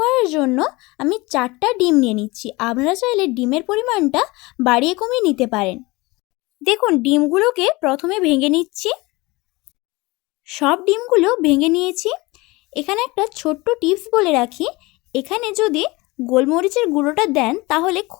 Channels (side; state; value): right; quieter; 22.9 dB